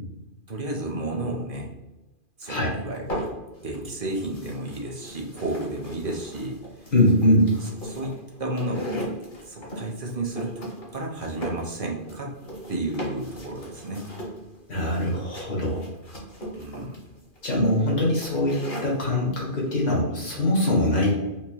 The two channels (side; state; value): right; late; 2.4 ms